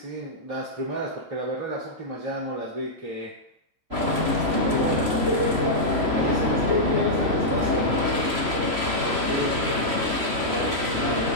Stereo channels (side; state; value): left; late; 3.0 ms